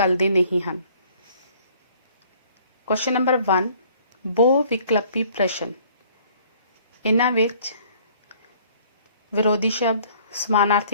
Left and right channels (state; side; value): inverted; both; correlation -0.57